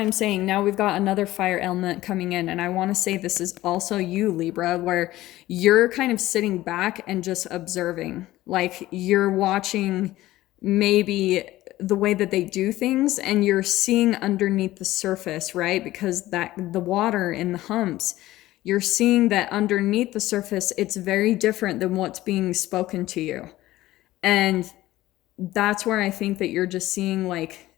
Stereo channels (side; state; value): right; quieter; 16.1 dB